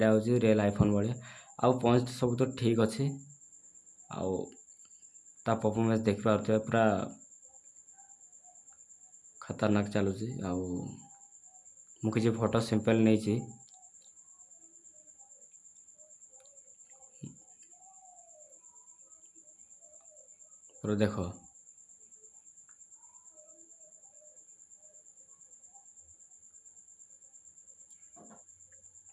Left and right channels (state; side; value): identical; both; correlation 1.00